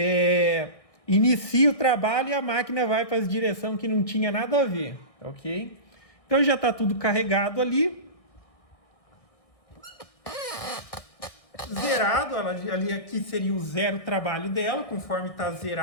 inicia o trabalho e a máquina vai para a direção que não tinha nada a ver, ok? Então já está tudo carregado ali. Zerado, ali aqui seria o zero trabalho dela, conforme está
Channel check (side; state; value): right; late; 1.6 ms